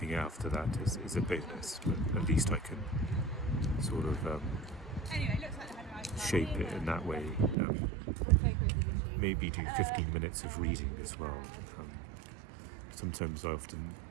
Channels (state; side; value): drops out; left; at 7.6 s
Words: after that is a bonus, but at least I can sort of shape it in that way. Maybe do 15 minutes of reading as well. Sometimes I often